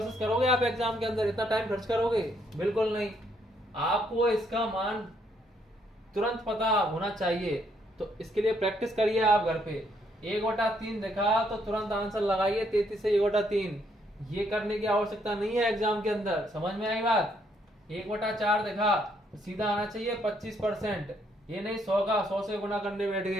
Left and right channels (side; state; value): both; normal; correlation 0.71